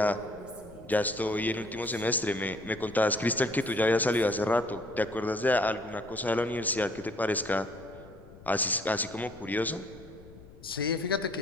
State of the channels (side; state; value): left; noise; rumble, 20 dB below the sound